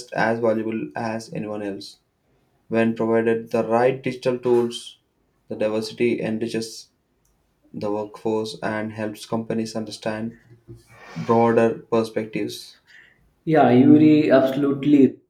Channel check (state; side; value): identical; both; correlation 1.00